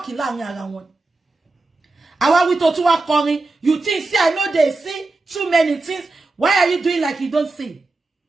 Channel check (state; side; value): quieter; left; 3.3 dB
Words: láàrin ara wọn. Àwa wí tó tún wá kọrin, you think say I know they see too many things. Why are you doing like you don't see?